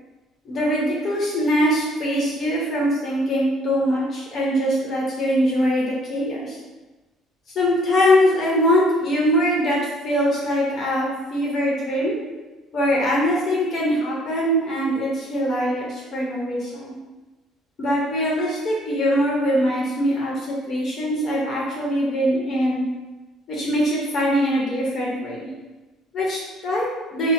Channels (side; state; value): both; normal; correlation 0.61